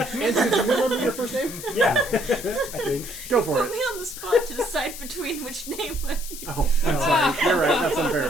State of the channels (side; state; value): left; noise; hiss, 11 dB below the sound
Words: do you remember your first name? Yeah. I think. Go for Put it. me on the spot to decide between which name I use. Oh, I'm sorry. You're right. That's unfair